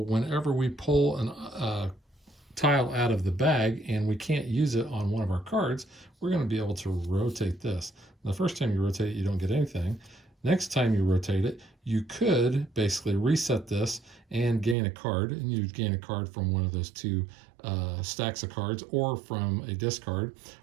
whenever we pull a tile out of the bag and we can't use it on one of our cards, we're going to be able to rotate this. The first time you rotate it, you don't get anything. Next time you rotate it, you could basically reset this and gain a card, and you'd gain a card from one of those 2 stacks of cards or from a discard.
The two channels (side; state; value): left; drops out; at 14.8 s